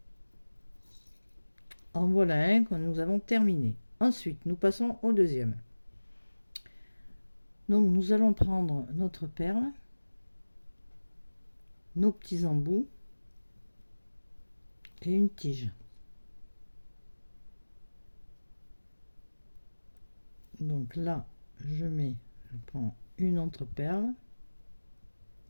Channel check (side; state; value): both; inverted; correlation -1.00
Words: En voilà un que nous avons terminé. Ensuite, nous passons au deuxième. Donc, nous allons prendre notre perle. nos petits embouts et une tige. Donc là, je prends une entreperle,